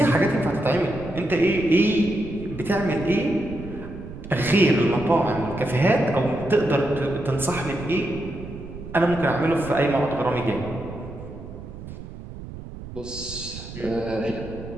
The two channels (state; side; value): noise; right; rumble, 12 dB below the sound